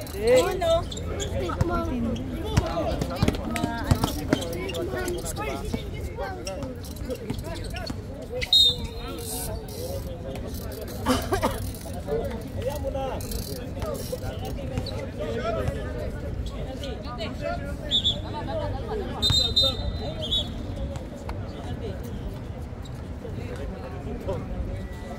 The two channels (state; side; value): identical; both; correlation 1.00